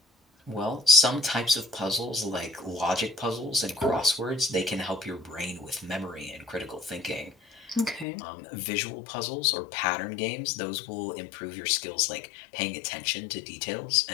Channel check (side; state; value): right; drops out; at 8.1 s